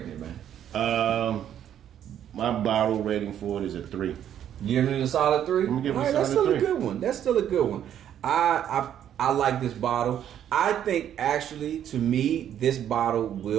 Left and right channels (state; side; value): quieter; left; 10.2 dB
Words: it, man? My bottle rating for it is a 3. Giving it a solid 3. I'm giving it a that's solid still 3. a good one. That's still a good one. I like this bottle. I think actually, to me, this bottle